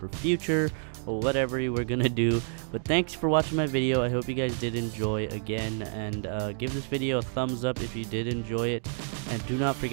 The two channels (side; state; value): left; silent; digital silence